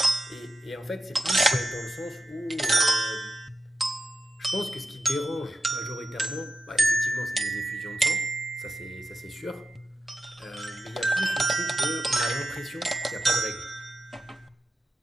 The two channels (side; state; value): both; normal; correlation 0.90